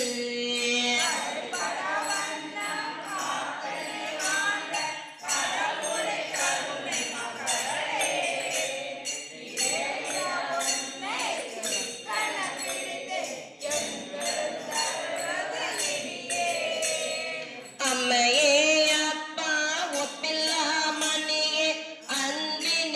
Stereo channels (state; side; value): identical; both; correlation 1.00